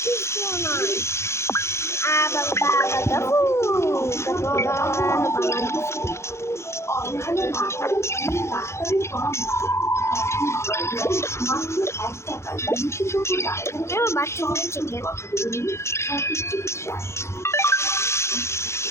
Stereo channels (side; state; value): right; late; 0.13 ms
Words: কিছু নয় আবার বাবা দাবু বাচ্চাদের চিকেন বাচ্চাদের